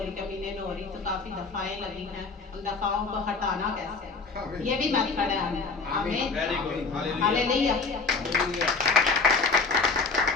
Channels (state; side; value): quieter; right; 4.3 dB